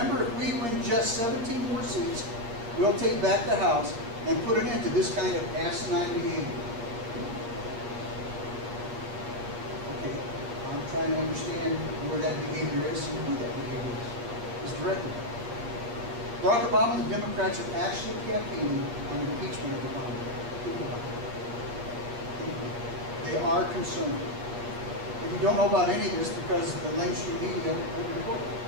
if we win just 17 more seats, we'll take back the House and put an end to this kind of asinine behavior. Okay, I'm trying to understand where that behavior is and who that behavior is directed at. Barack Obama and the Democrats are actually campaigning on impeachment of Obama. They are concerned. If you don't know about any of this because the mainstream media won't report it.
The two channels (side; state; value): left; late; 8.6 ms